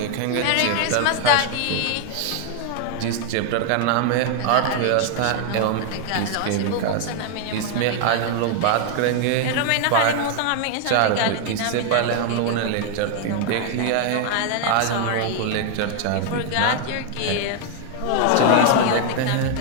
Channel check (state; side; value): different; both; correlation 0.00